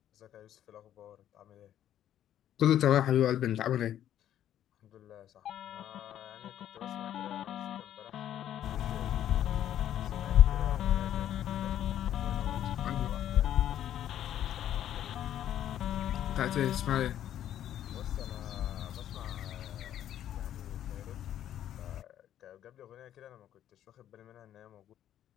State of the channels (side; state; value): right; quieter; 11.2 dB